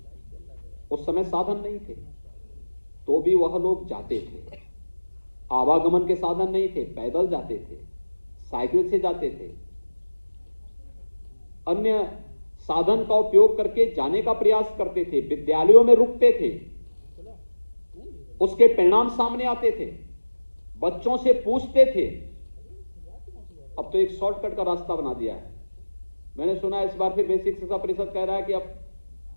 उस समय साधन नहीं थे, तो भी वह लोग जाते थे। आवागमन के साधन नहीं थे, पैदल जाते थे, साइकिल से जाते थे, अन्य साधन का उपयोग करके जाने का प्रयास करते थे, विद्यालयों में रुकते थे, उसके परिणाम सामने आते थे, बच्चों से पूछते थे। अब तो एक शॉर्टकट का रास्ता बना दिया है। मैंने सुना इस बार फिर बेसिक शिक्षा परिषद कह रहा है कि अब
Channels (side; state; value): both; inverted; correlation -1.00